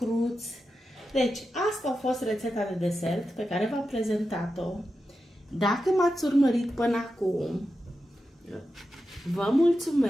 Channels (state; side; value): normal; both; correlation 0.90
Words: Deci, asta a fost rețeta de desert pe care v-am prezentat-o. Dacă m-ați urmărit până acum, vă